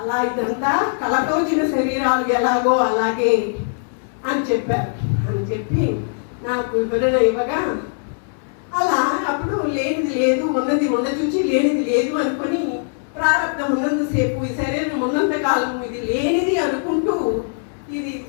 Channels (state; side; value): silent; right; digital silence